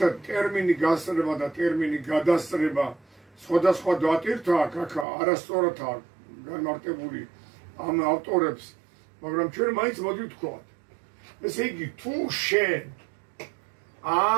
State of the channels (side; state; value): left; drops out; at 5.1 s